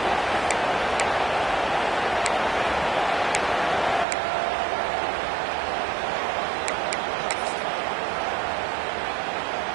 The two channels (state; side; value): drops out; left; at 4.0 s